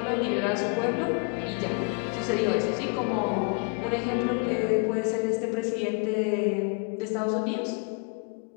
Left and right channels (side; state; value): right; quieter; 34.9 dB